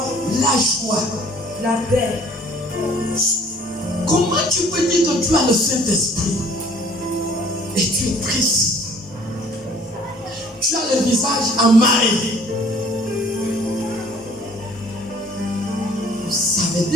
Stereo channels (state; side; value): normal; both; correlation 0.54